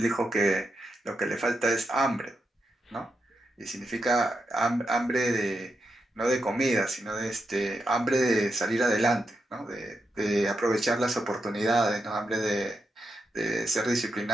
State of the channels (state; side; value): normal; both; correlation 0.85